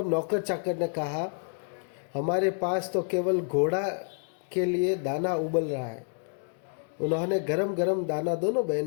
नौकर चाकर ने कहा, हमारे पास तो केवल घोड़ा के लिए दाना उबल रहा है। उन्होंने गरम गरम दाना दोनों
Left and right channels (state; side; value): silent; right; 59 dB below the other